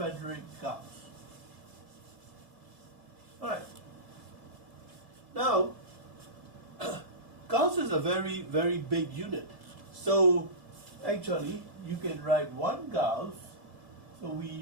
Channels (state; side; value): late; left; 1.7 ms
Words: Gauss. All right. Now, Gauss is a very, very big unit. So, actually, you can write 1 Gauss. So we